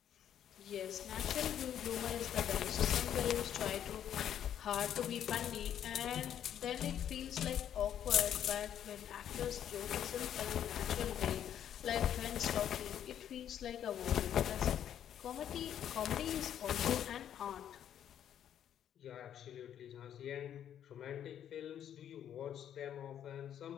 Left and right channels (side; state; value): right; quieter; 10.0 dB